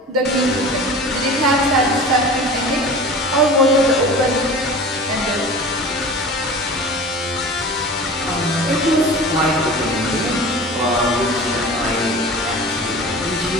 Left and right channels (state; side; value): normal; both; correlation 0.37